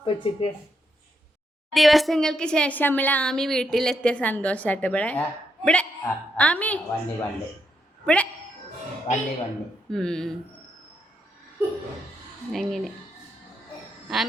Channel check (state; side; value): normal; both; correlation 0.80